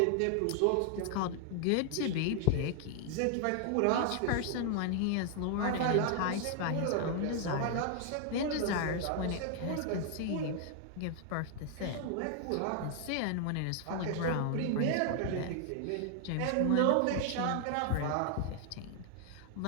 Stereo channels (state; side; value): different; both; correlation 0.00